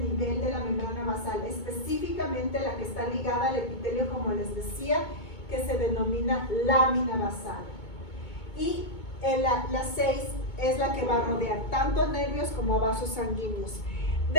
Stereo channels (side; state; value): right; late; 2.2 ms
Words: de la membrana basal, específicamente la que está ligada al epitelio, como les decía, que se denomina lámina basal. Y la 6 es la que va a rodear tanto a nervios como a vasos sanguíneos.